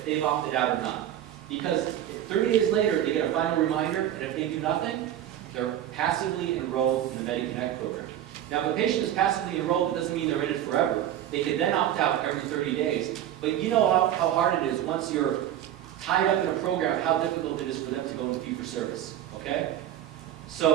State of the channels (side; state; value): left; quieter; 11.5 dB